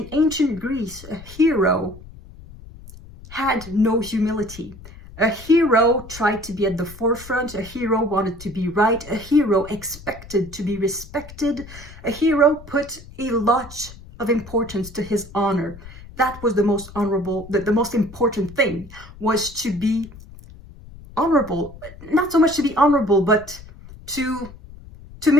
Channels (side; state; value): left; noise; rumble, 18 dB below the sound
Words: ancient Greece, a hero had no humility. A hero tried to be at the forefront. A hero wanted to be right. A hero expected to be respected. A hero put a lot of importance to his honor. That was the most honorable, the most important thing was to be honorable. Not so much to be honorable, but to